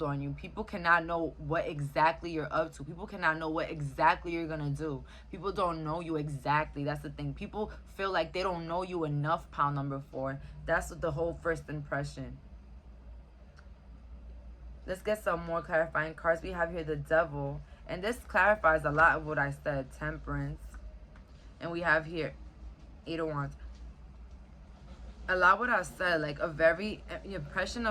on you. People cannot know what exactly you're up to. People cannot know what exactly you're gonna do. People don't know you exactly. That's the thing. People feel like they don't know you enough, pound number 4. That's what the whole first impression. Let's get some more clarifying cards. We have here the Devil. And this clarifies a lot of what I said. Temperance. And we have here 8 of Wands. A lot what I said, like the impression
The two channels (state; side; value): identical; both; correlation 1.00